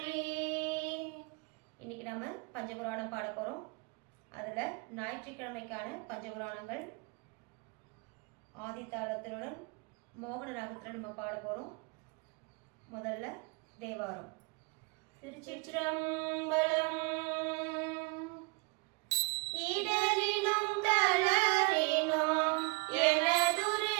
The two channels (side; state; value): left; quieter; 29.6 dB